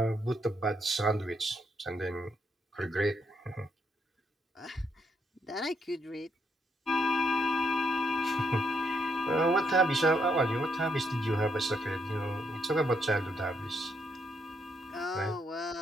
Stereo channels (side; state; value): both; normal; correlation 0.75